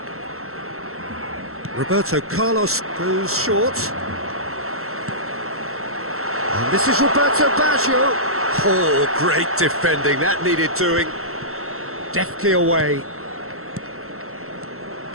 Roberto Carlos goes short. And this is Roberto Baggio. Oh, great defending, that needed doing. Deftly away.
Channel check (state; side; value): late; left; 0.63 ms